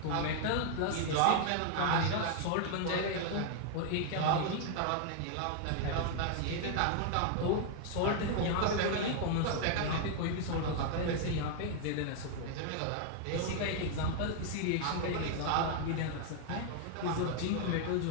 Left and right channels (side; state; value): both; different; correlation 0.00